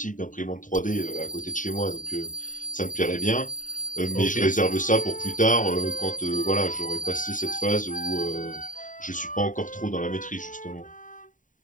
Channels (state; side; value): late; right; 0.38 ms